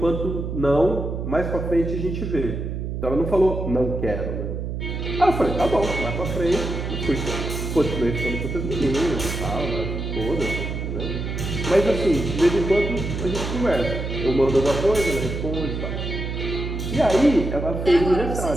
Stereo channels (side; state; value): right; noise; hum, 4 dB below the sound